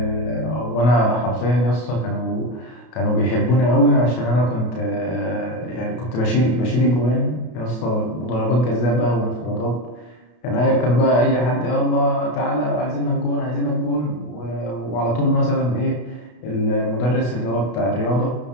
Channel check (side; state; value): right; late; 32 ms